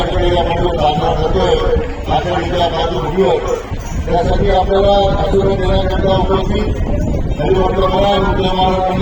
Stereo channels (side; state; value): both; identical; correlation 1.00